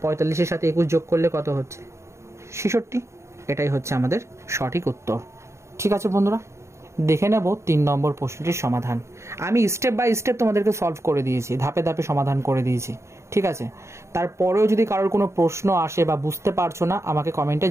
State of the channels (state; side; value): late; left; 0.14 ms